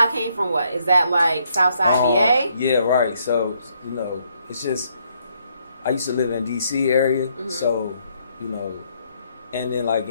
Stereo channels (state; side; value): inverted; both; correlation -0.72